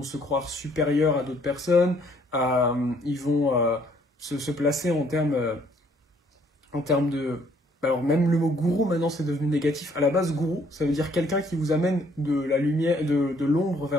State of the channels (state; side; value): normal; both; correlation 0.64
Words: se croire supérieurs à d'autres personnes, ils vont se placer en termes de... Alors même le mot gourou maintenant c'est devenu négatif. À la base gourou ça veut dire quelqu'un qui vous amène de la lumière, de l'ombre